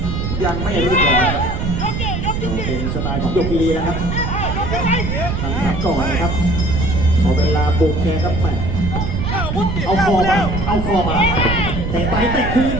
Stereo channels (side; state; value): right; noise; rumble, 2 dB below the sound